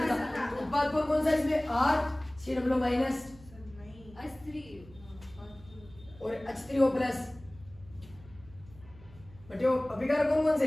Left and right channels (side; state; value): right; noise; hum, 22 dB below the sound